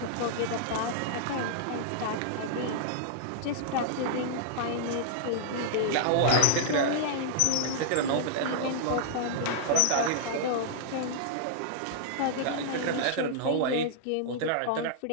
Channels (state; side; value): different; both; correlation -0.01